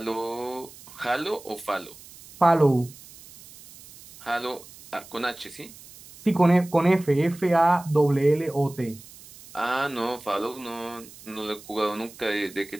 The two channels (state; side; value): noise; right; hiss, 20 dB below the sound